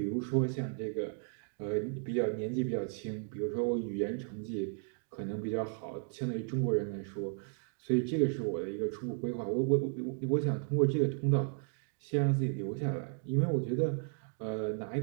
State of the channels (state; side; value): silent; left; 55 dB below the other